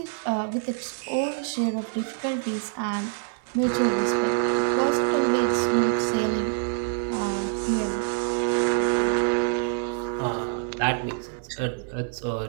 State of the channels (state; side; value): silent; left; digital silence